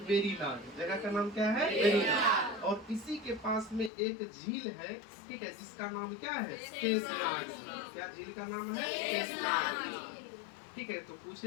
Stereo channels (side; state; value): right; drops out; at 3.9 s